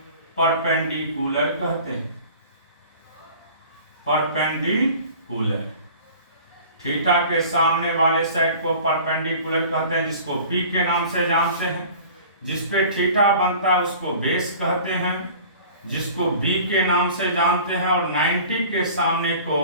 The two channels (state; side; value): inverted; both; correlation -0.44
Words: परपेंडिकुलर कहते हैं, परपेंडिकुलर। थीटा के सामने वाले साइड को परपेंडिकुलर कहते हैं, जिसको P के नाम से जानते हैं। जिस पे थीटा बनता है उसको बेस कहते हैं, जिसको B के नाम से जानते हैं। और 90 के सामने को